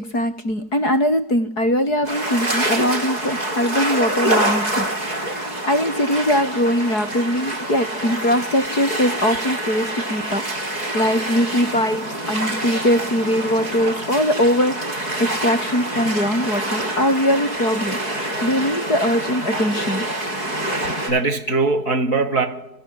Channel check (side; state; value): right; late; 4.7 ms